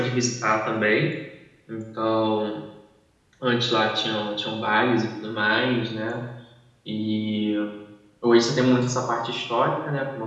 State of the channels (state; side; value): identical; both; correlation 1.00